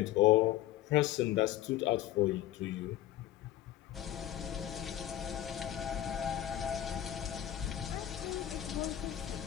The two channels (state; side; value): quieter; right; 12.8 dB